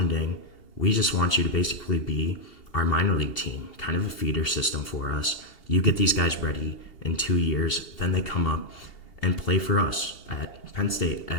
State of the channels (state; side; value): late; right; 2.8 ms